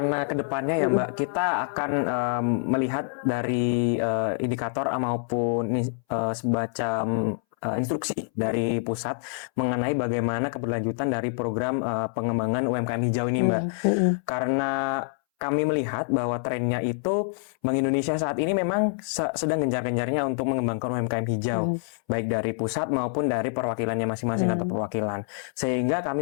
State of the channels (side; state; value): right; silent; 61 dB below the other